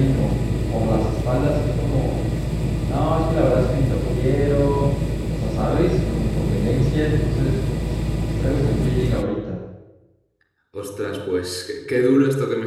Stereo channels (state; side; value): identical; both; correlation 1.00